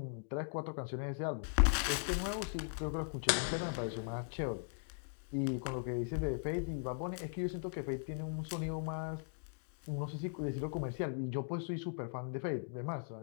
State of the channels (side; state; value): right; silent; digital silence